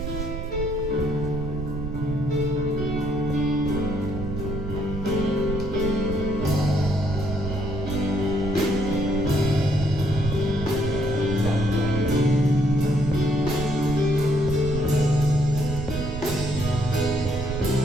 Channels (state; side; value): noise; right; rumble, 6 dB below the sound